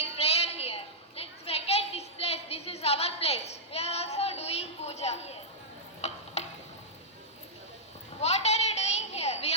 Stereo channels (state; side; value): normal; both; correlation -0.10